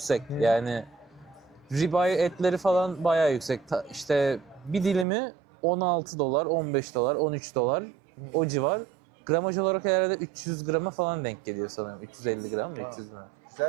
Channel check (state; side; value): drops out; left; at 5.1 s